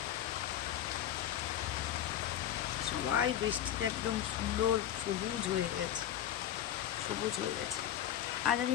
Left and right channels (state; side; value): quieter; right; 11.0 dB